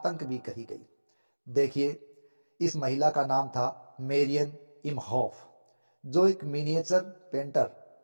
भी कही गई। देखिए, इस महिला का नाम था मेरियन इमहॉफ, जो एक मिनिएचर पेंटर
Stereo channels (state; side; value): inverted; both; correlation -1.00